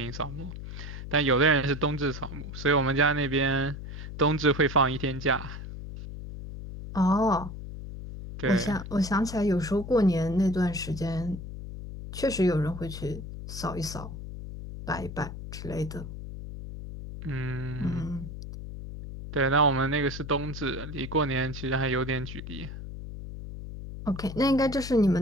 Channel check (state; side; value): noise; left; hum, 9 dB below the sound